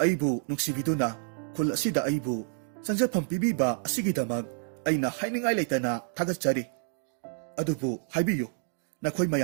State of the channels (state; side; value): silent; left; digital silence